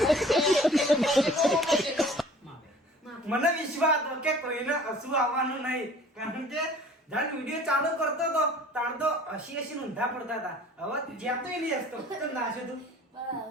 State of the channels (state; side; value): normal; both; correlation 0.48